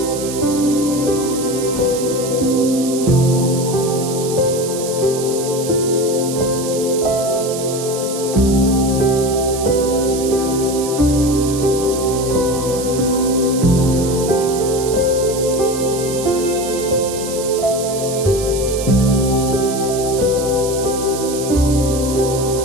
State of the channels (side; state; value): right; noise; hiss, 9 dB below the sound